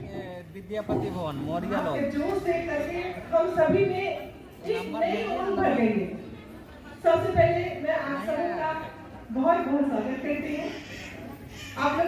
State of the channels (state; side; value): identical; both; correlation 1.00